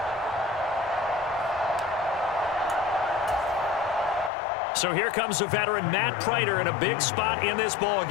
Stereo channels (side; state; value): right; drops out; at 4.3 s